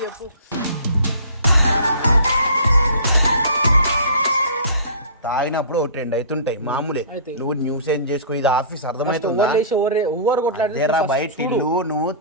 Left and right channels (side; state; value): both; inverted; correlation -0.42